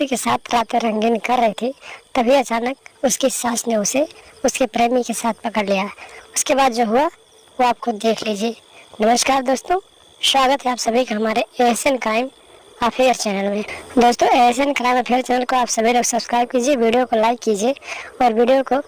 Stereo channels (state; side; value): identical; both; correlation 1.00